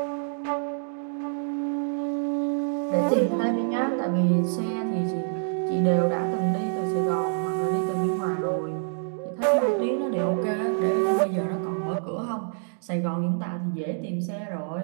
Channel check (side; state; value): left; silent; digital silence